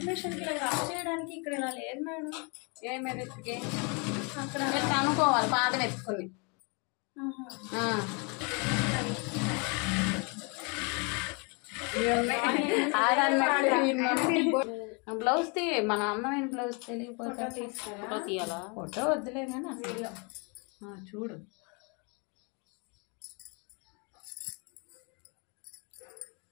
మిషన్కి ఇలా రఫ్ చేయడానికి ఇక్కడ ఇలా లేదు మేడం. ఏ మెరిట్కి? అక్కడ అనుకోవాలి పాదం ఎత్తుకుని. బ్లౌజ్ తీ, మన అందమైన బ్లౌజ్ తెలియకపోతే తీయాలా? ఫోటో వద్దులే కానీ అసలు చూడు.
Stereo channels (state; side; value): quieter; right; 33.3 dB